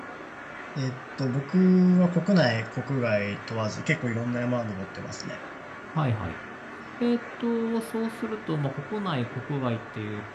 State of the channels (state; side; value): identical; both; correlation 1.00